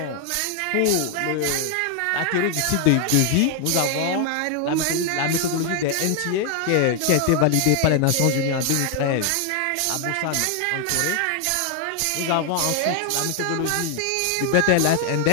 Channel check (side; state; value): both; different; correlation 0.00